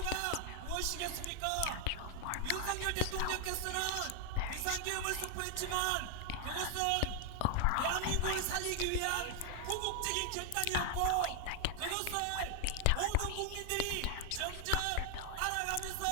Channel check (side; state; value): both; different; correlation 0.00